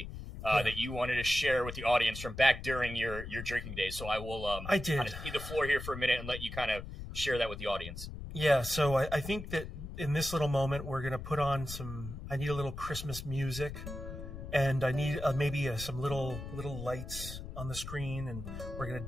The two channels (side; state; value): left; noise; rumble, 9 dB below the sound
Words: that you wanted to share with the audience from back during your drinking days. So I will kind of cede the floor here for a minute and let you kind of share that with the audience. Yeah, so I think that in this little moment we're going to put on I need a little Christmas music, and I need maybe some little lights on the screen, and we're going to